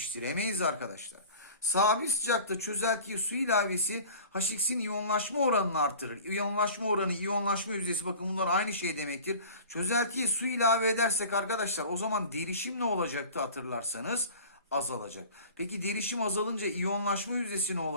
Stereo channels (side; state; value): both; inverted; correlation -0.41